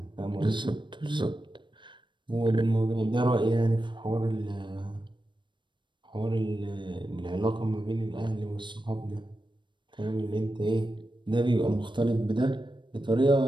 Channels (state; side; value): late; left; 0.23 ms